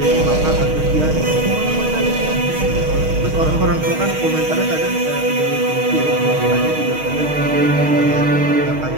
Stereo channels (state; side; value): late; left; 6.4 ms